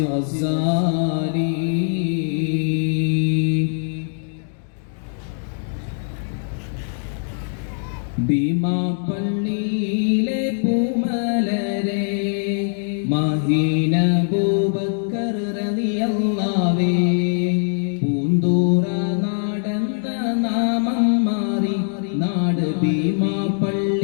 ഭീമാ പള്ളിയിലെ പൂമലരെ മഹീന അബൂബക്കർ റളിയല്ലാഹുവേ പൂന്തൂറ നാടെന്ന നാമം മാറി നാട് ഭീമാ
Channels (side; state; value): right; silent; digital silence